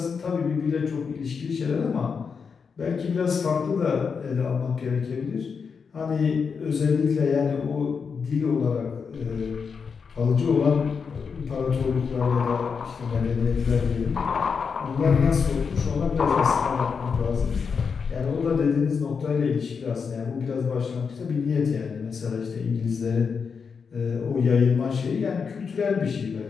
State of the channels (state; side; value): quieter; right; 5.8 dB